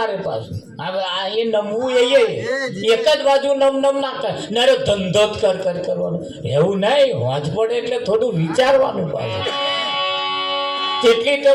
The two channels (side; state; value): both; identical; correlation 1.00